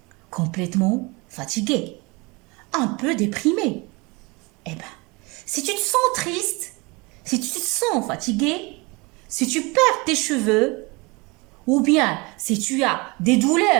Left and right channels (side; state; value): left; quieter; 26.4 dB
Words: complètement fatigués, un peu déprimés. Eh bien, si tu te sens triste, si tu te sens fatigué, si tu perds tes cheveux, ou bien si tu as des